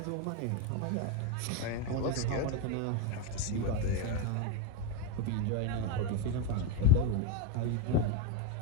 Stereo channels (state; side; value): different; both; correlation 0.04